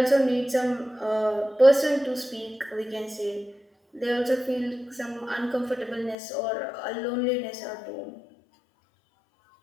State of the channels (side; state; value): right; drops out; at 6.2 s